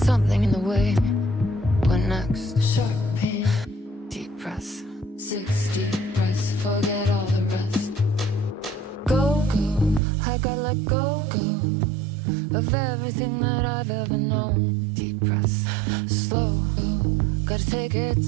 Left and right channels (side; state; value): left; drops out; at 10.0 s